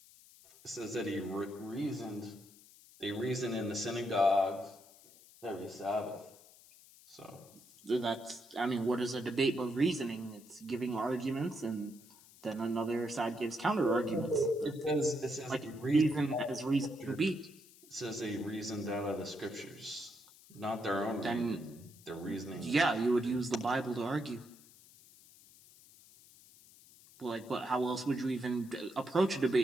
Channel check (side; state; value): left; noise; hiss, 23 dB below the sound